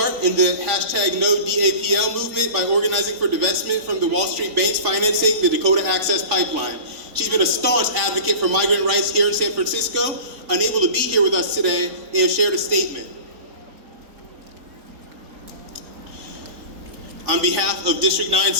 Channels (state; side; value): late; left; 3.9 ms